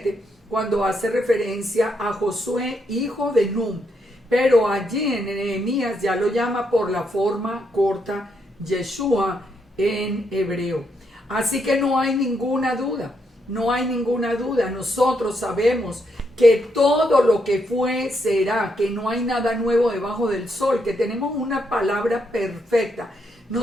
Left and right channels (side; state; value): both; normal; correlation 0.78